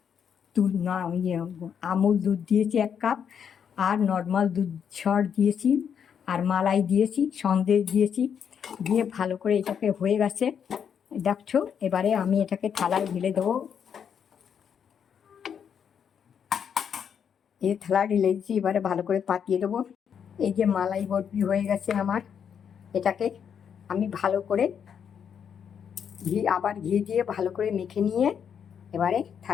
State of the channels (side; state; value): right; quieter; 7.7 dB